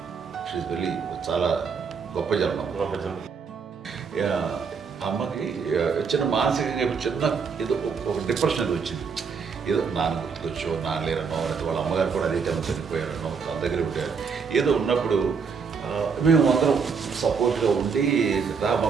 షీఈ్ వెరీ చాలా గొప్ప జన్మ. అమ్మకి చిన్న మానసికంగా చిన్న ఏదో ఒక డిప్రెషన్ వచ్చింది. ఏదో నాన్న గుర్తుకొచ్చో, నాన్న లేరనో, లేకపోతే వాళ్ళ అమ్మగారు కూడా అదే టైం చనిపోయారనో, తన దగ్గర ఉంటారు ఏదో ఉన్నప్పుడు మేము అందరం సపోర్ట్గా ఉండి రామా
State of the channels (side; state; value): left; quieter; 5.7 dB